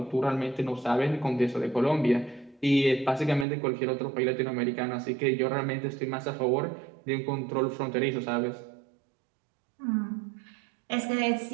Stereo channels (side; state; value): left; drops out; at 3.5 s